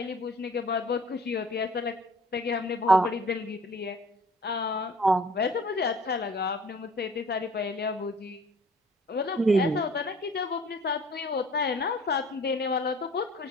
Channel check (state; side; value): normal; both; correlation 0.51